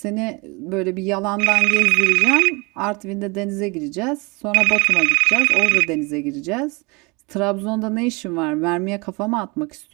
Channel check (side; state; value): left; quieter; 27.8 dB